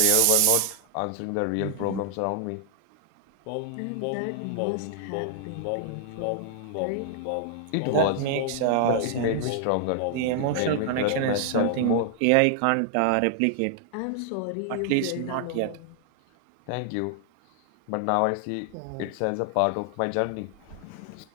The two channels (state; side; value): different; both; correlation -0.01